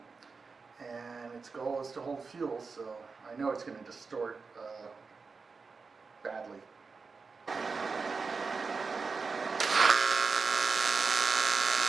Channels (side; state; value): left; quieter; 4.7 dB